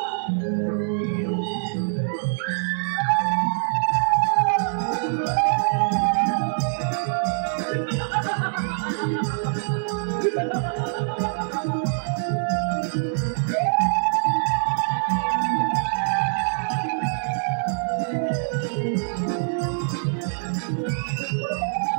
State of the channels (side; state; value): left; silent; digital silence